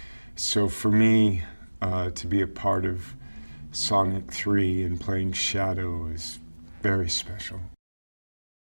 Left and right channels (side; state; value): both; inverted; correlation -1.00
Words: so for me, to be a part of Sonic 3 and playing Shadow is very special.